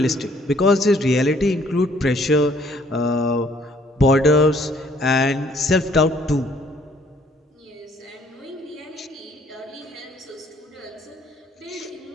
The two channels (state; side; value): normal; both; correlation 0.62